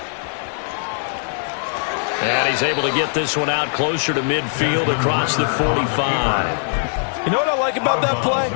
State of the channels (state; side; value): silent; right; 60 dB below the other